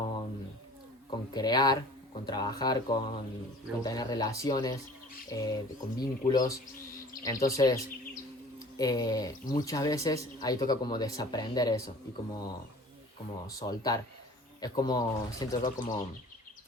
crear, con trabajar, con tener relaciones, con vínculos. Entonces, muchas veces ahí toca como desaprender eso y como soltar. Es como, siento yo como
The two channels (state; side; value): normal; both; correlation 0.46